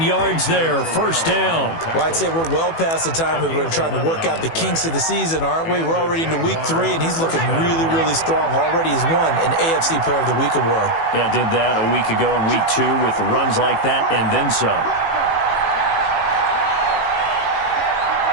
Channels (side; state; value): right; late; 18 ms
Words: yards there, first down. Well, I'd say we're well past the time that we're trying to work out the kinks of the season, aren't we? We're already into week 3, and he's looking really, really strong. Already has won an AFC Player of the Week award. Yeah, did that a week ago in week 2 with runs like that and then some.